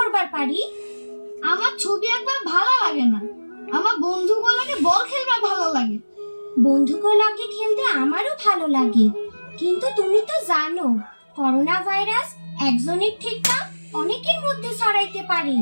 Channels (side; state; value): both; inverted; correlation -1.00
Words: পারি। আমার ছবি আঁকবার ভালো লাগে না, আমার বন্ধুগুলোকে বল খেলবার ভালো লাগে। বন্ধুগুলোকে খেলতে আমারও ভালো লাগে, কিন্তু তুমি তো জানো করোনা ভাইরাস একজনের থেকে অনেকের মধ্যে ছড়াইতে পারে।